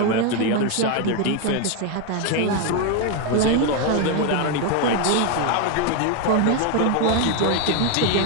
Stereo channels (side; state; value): both; different; correlation 0.01